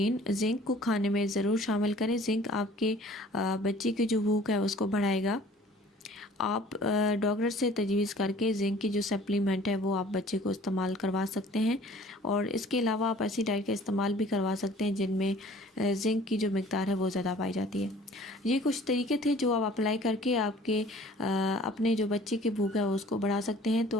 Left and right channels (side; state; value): both; normal; correlation 0.51